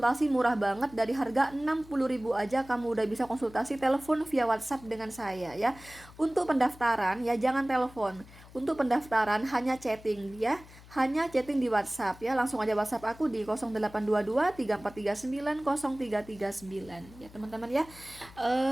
murah banget. Dari harga 60.000 aja kamu udah bisa konsultasi telepon via WhatsApp dengan saya ya. Untuk pendaftaran ya jangan telepon. Untuk pendaftaran hanya chatting ya. Hanya chatting di WhatsApp ya. Langsung aja WhatsApp aku di 0822 3439 0339 ya teman-teman ya.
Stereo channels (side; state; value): left; noise; hum, 21 dB below the sound